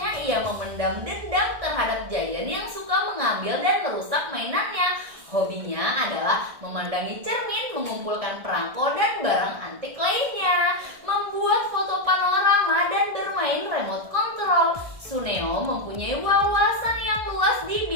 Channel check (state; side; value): late; left; 1.7 ms